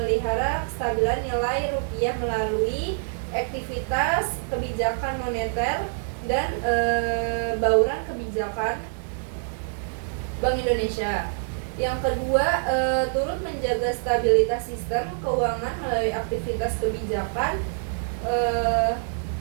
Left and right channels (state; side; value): silent; left; digital silence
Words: kestabilan nilai rupiah melalui aktivitas kebijakan moneter dan bauran kebijakan Bank Indonesia. Yang kedua, turut menjaga stabilitas sistem keuangan melalui aktivitas kebijakan